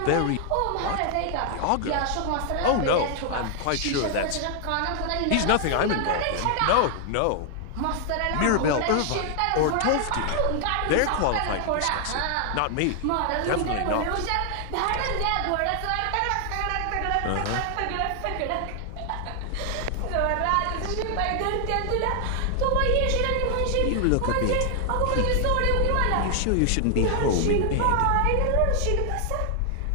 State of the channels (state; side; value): different; both; correlation 0.00